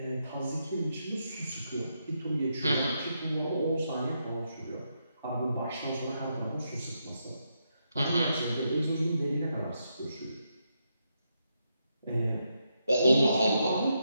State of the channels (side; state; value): both; inverted; correlation -0.82